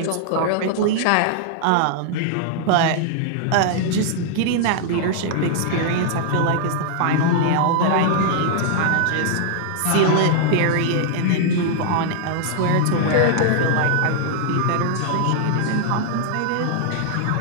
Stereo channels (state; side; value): different; both; correlation 0.00